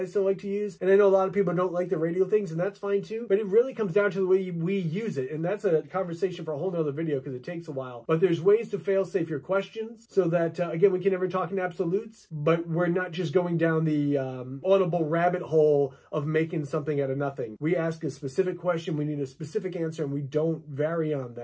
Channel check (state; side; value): identical; both; correlation 1.00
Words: still like to use. And I know a lot of people don't like the radio things, and that's fine too. But it really comes down to the way we use it. And that's a conversation for a whole nother video because it takes a while. But there's ways to fail-safe your questions so that, again, we can never talk in absolutes, but we're not just going down the audible rabbit hole of making something out of nothing. We ask a specific question, we need a specific answer, and we don't vary on